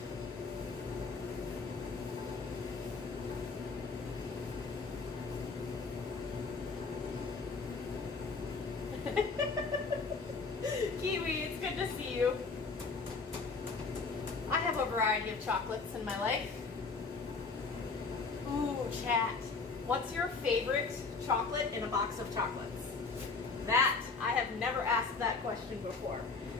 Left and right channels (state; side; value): quieter; right; 4.4 dB